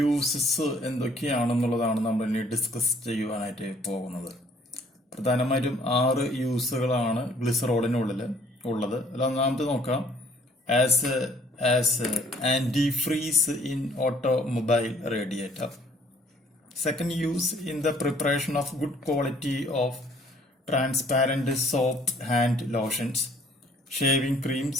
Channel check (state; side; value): normal; both; correlation 0.59